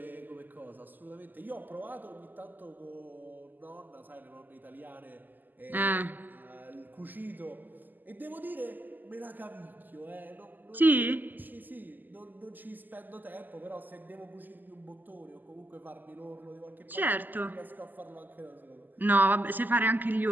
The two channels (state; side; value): late; left; 0.087 ms